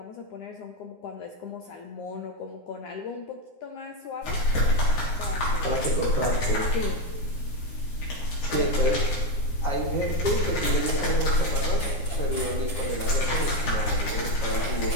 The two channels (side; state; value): right; late; 9.8 ms